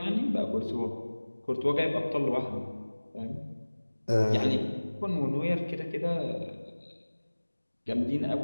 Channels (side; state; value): both; inverted; correlation -1.00